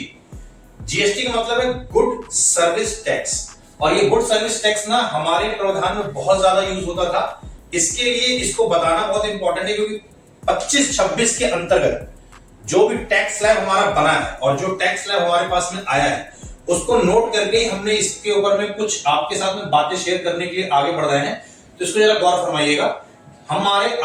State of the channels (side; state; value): both; identical; correlation 1.00